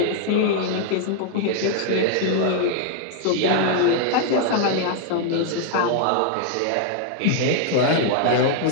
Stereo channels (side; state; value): both; different; correlation 0.00